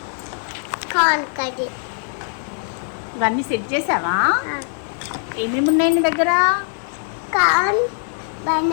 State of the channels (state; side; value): silent; right; digital silence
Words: ఇవన్నీ సెట్ చేసావా? ఏమేమి ఉన్నాయి నీ దగ్గర? Corn,